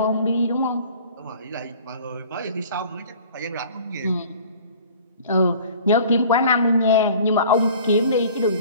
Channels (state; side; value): inverted; both; correlation -0.47